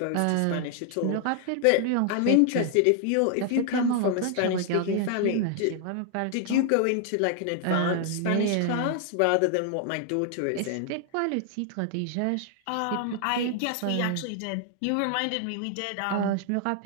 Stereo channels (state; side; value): different; both; correlation 0.00